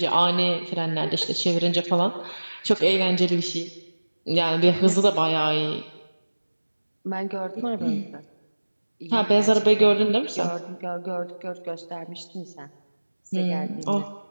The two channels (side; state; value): both; inverted; correlation -1.00